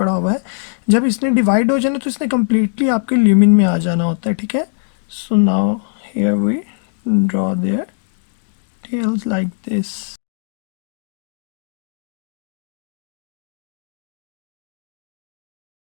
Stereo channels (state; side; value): silent; right; digital silence